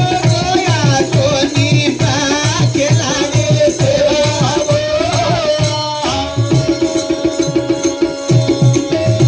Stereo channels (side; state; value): both; identical; correlation 1.00